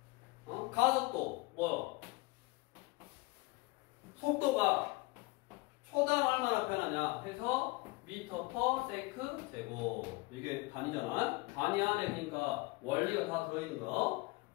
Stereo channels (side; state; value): right; quieter; 23.6 dB